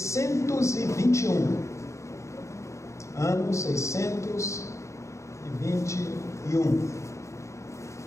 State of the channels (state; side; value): late; right; 0.14 ms